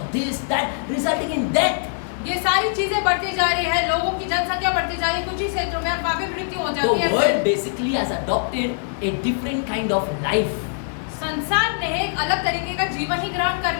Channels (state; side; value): silent; right; 64 dB below the other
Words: this, that, resulting in death. है। ये सारी चीजें बढ़ती जा रही है, लोगों की जनसंख्या बढ़ती जा रही है, कुछ ही क्षेत्रों में और काफी मृत्यु हो The जाती है। world basically has adopted a different kind of life. संसार ने एक अलग तरीके का जीवन ही ग्रहण कर